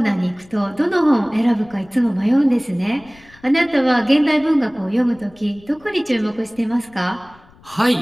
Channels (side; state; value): left; noise; rumble, 27 dB below the sound